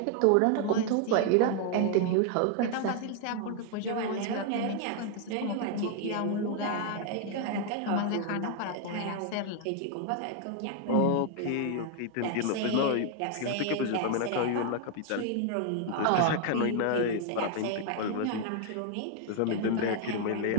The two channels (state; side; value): different; both; correlation 0.00